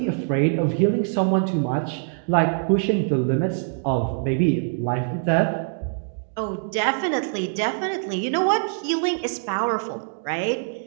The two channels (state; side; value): silent; left; digital silence